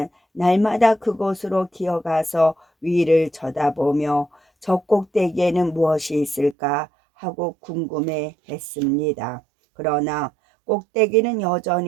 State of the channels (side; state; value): left; drops out; at 6.6 s